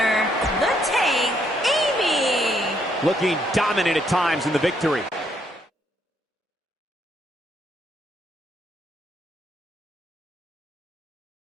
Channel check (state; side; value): normal; both; correlation 0.73